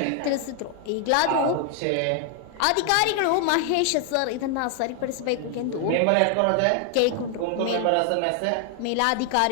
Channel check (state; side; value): different; both; correlation 0.00